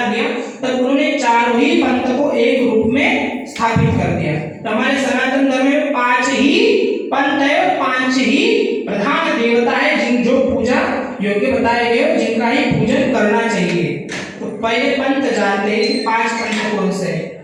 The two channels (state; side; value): identical; both; correlation 1.00